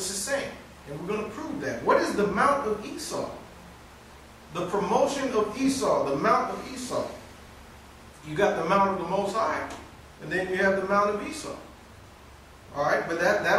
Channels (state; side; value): identical; both; correlation 1.00